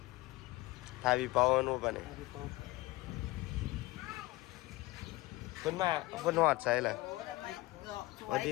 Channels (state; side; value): quieter; right; 20.3 dB